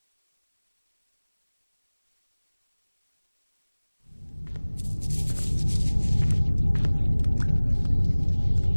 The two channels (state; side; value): inverted; both; correlation -1.00